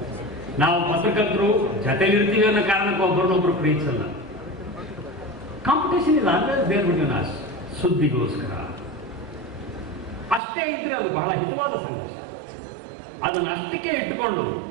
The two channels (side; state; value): left; drops out; at 10.4 s